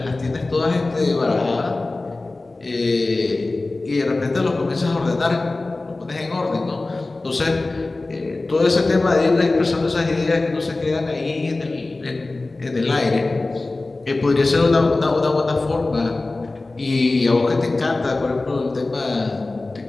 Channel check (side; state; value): right; quieter; 3.2 dB